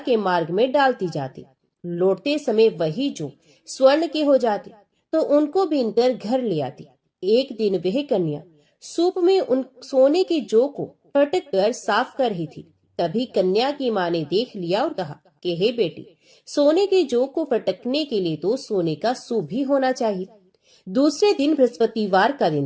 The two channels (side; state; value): both; identical; correlation 1.00